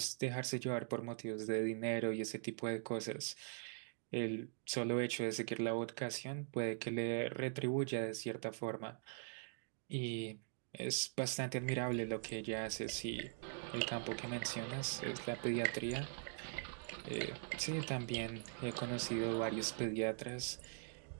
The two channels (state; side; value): silent; left; digital silence